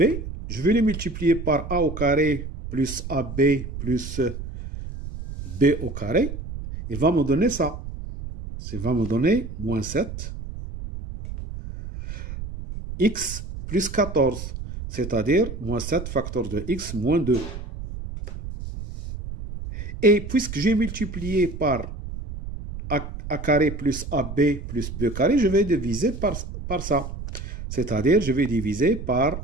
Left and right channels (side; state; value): right; noise; rumble, 9 dB below the sound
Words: je vais le multiplier par a au carré plus ab plus b au carré. Il va me donner ça. Ça va me donner moins 7 x plus 14, c'est-à-dire moins 7 facteur de x moins 2. Et puisque j'ai multiplié par a carré plus ab plus b carré, je vais diviser par ça. C'est-à-dire, je vais diviser par